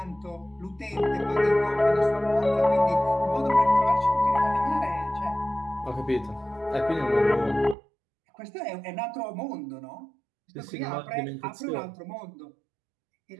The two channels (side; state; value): left; drops out; at 7.8 s